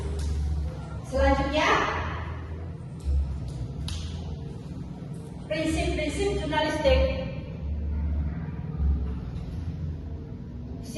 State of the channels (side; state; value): both; identical; correlation 1.00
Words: Selanjutnya, prinsip-prinsip jurnalistik. Di